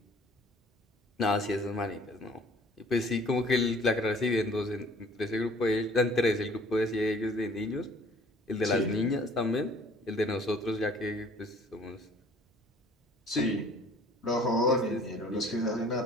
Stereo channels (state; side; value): normal; both; correlation 0.53